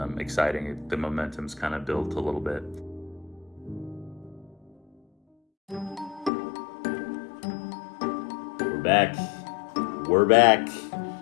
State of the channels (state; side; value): drops out; right; at 6.3 s